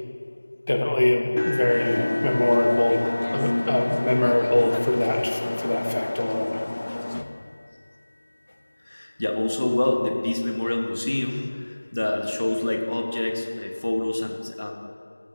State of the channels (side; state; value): both; inverted; correlation -1.00